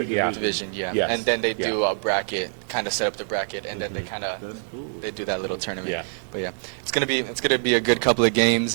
And then they do a bracket, kind of set up the bracket, and then they do that little tournament. But it's gonna be a good couple of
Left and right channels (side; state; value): left; silent; digital silence